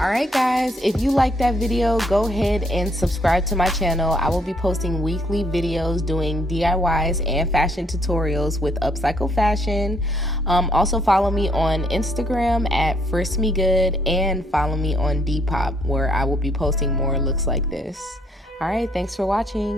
guys, if you like that video, go ahead and subscribe to my channel. I will be posting weekly videos doing DIYs and fashion tutorials with upcycled fashion. Also follow me on Instagram at FristMeGood and follow me on Depop, where I will be posting more looks like this. Alright, thanks for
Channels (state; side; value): normal; both; correlation 0.69